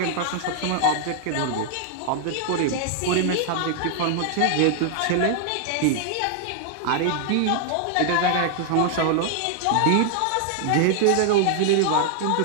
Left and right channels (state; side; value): different; both; correlation 0.00